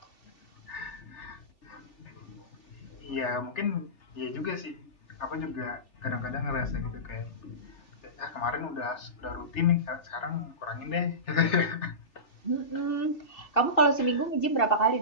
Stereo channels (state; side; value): late; right; 3.3 ms